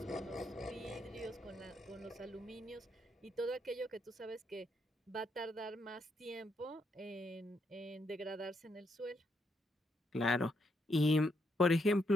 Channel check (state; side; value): normal; both; correlation 0.77